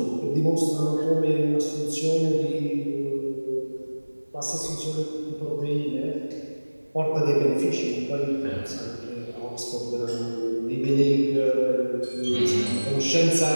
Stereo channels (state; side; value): inverted; both; correlation -1.00